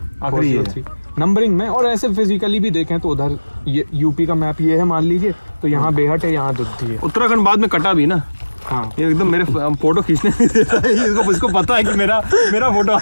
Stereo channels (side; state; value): both; inverted; correlation -1.00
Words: आखिरी है नंबरिंग में। और ऐसे फिजिकली भी देखें तो उधर ये यूपी का मैप ये है मान लीजिए, तो यहाँ बेहट है, यहाँ दुद्धि है। उत्तराखंड बाद में कटा भी ना। हाँ, ये एकदम मेरे फोटो खींचने नहीं देता है। इसको पता है कि मेरा फोटो